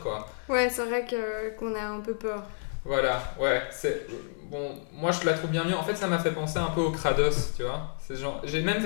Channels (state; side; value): silent; right; digital silence